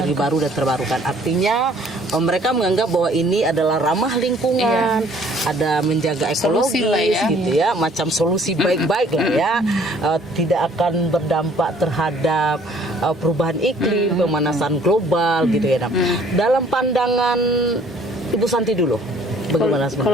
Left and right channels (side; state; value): both; normal; correlation 0.58